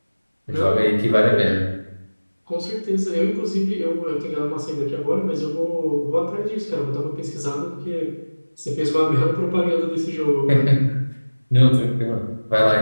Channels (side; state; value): both; inverted; correlation -1.00